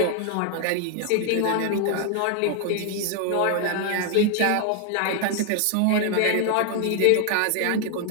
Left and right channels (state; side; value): different; both; correlation 0.00